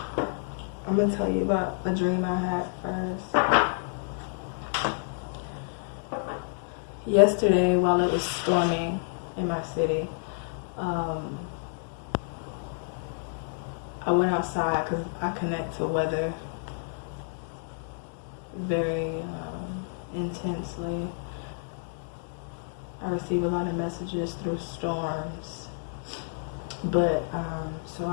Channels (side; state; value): right; silent; digital silence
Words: I'm going to tell you about a dream I had first. Yesterday, while it was storming in my city, I went outside because I connect to weather very intensely. I receive a lot of messages through storms. But so